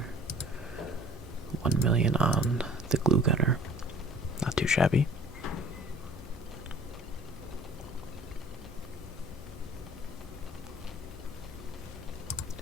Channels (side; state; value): both; normal; correlation 0.49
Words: 1 million on the Glue Gunner. Not too shabby.